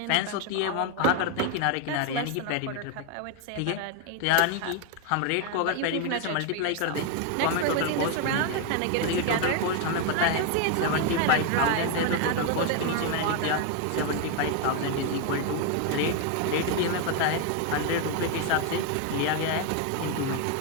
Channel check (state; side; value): different; both; correlation 0.01